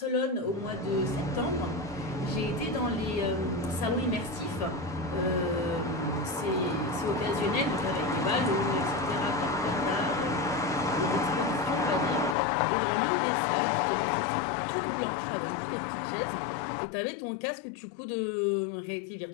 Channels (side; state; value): right; drops out; at 12.4 s